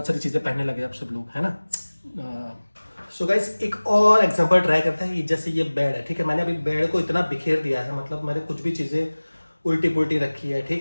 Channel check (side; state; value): both; inverted; correlation -1.00